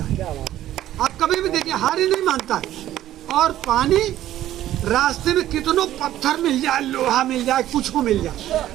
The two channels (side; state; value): left; quieter; 13.1 dB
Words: है। आप कभी भी देखिए हार ही नहीं मानता है। और पानी रास्ते में कितनों पत्थर मिल जाए, लोहा मिल जाए, कुछ को मिल जाए,